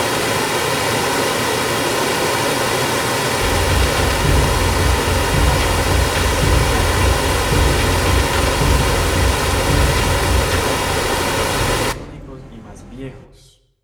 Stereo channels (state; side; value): identical; both; correlation 1.00